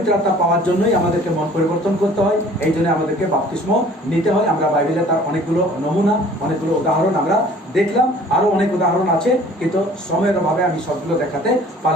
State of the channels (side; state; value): both; normal; correlation 0.51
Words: আত্মা পাওয়ার জন্যই আমাদেরকে মন পরিবর্তন করতে হয়, এই জন্য আমাদেরকে বাপ্তিস্ম নিতে হয়। আমরা বাইবেলে তার অনেকগুলো নমুনা, অনেকগুলো উদাহরণ আমরা দেখলাম, আরও অনেক উদাহরণ আছে, কিন্তু সময়ের অভাবে আমি সবগুলো দেখাতে